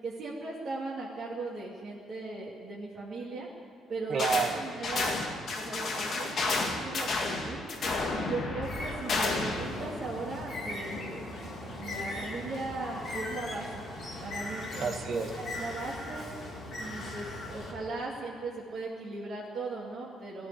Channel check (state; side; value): normal; both; correlation 0.71